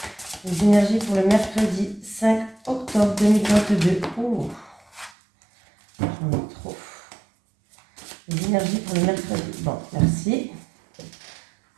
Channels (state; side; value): drops out; left; at 5.1 s